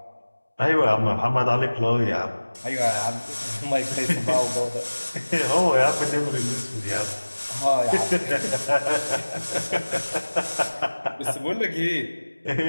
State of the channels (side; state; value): both; inverted; correlation -1.00